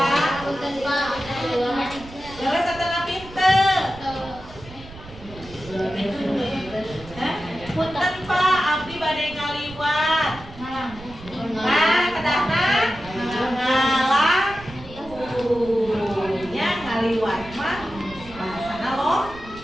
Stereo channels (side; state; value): right; noise; rumble, 17 dB below the sound